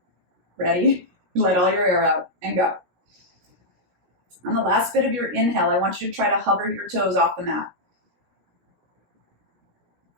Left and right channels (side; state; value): left; late; 17 ms